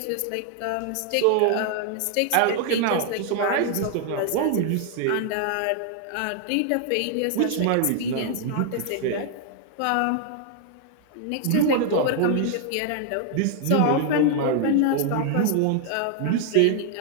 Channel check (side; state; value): both; different; correlation 0.00